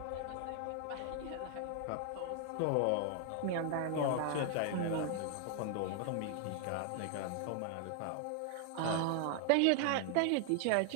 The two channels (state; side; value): different; both; correlation 0.00